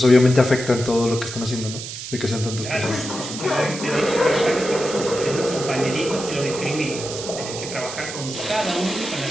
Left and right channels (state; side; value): noise; right; hiss, 9 dB below the sound